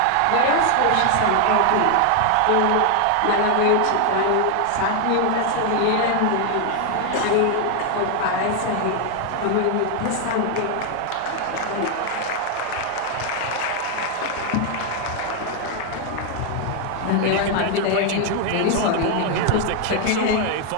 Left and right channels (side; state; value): both; different; correlation 0.00